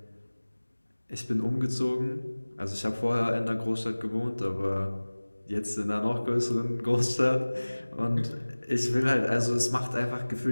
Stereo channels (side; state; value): both; inverted; correlation -1.00